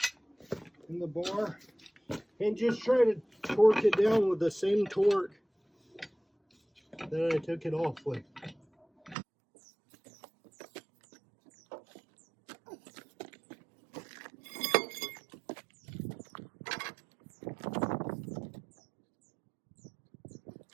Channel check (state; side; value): drops out; left; at 9.2 s